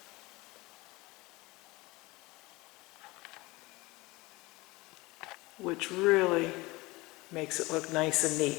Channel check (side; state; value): right; quieter; 22.2 dB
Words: Which really makes it look nice and neat.